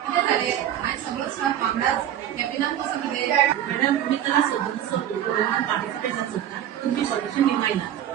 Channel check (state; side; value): quieter; left; 10.9 dB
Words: किती झाले आणि सगळं स्टाफ कामगार कॅबिनात कसं किती मॅडम तुम्ही कला सदस्य पार्टिसिपेट जाता तुमची सॉल्युशन निमायला